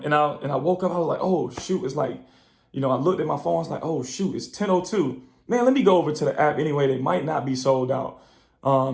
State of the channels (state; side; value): identical; both; correlation 1.00